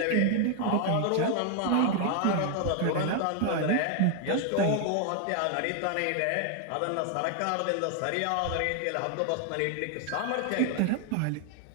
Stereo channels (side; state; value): both; different; correlation 0.00